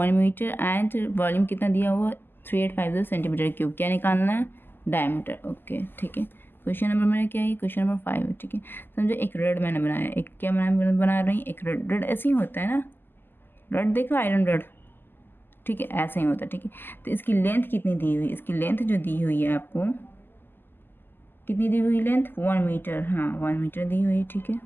मीटर। एंड वॉल्यूम कितना दिया हुआ? 3850 सेंटीमीटर क्यूब। क्या निकालना है? डायमीटर। ओके, ठीक है। क्वेश्चन नंबर मेरा क्या है? क्वेश्चन नंबर 5 है, ठीक है। समझो एक रॉड मैंने बनाया, एक क्या बना रही हूँ, एक रॉड। रॉड ऐसे ही होता है ना, रॉड देखो, आयरन रॉड, ठीक है, ऐसा ही होता है, ठीक है। तो इसकी लेंथ कितनी दी हुई? इसकी लेंथ जो दी हुई है आपको, कितनी दी हुई लेंथ? 1 मीटर। हाँ, 1 मीटर दी हुई है, ठीक है,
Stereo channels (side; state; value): right; late; 0.096 ms